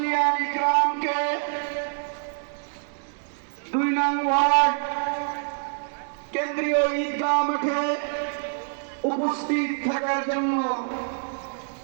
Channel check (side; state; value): left; silent; digital silence